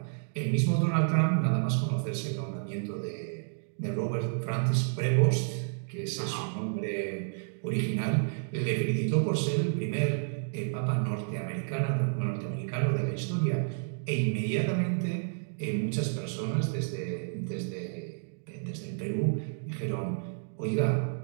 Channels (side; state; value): left; silent; digital silence